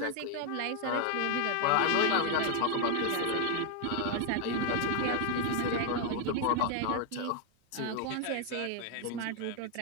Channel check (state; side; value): different; both; correlation 0.00